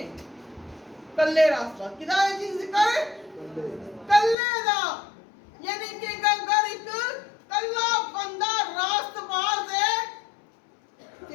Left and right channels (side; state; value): right; drops out; at 4.4 s